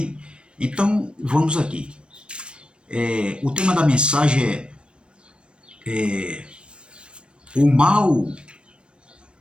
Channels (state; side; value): late; left; 0.057 ms